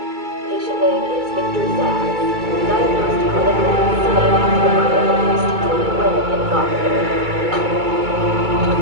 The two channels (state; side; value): late; left; 2.3 ms